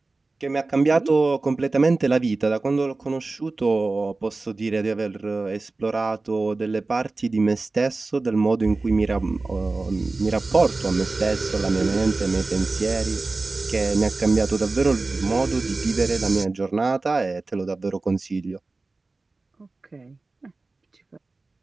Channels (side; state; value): left; quieter; 3.5 dB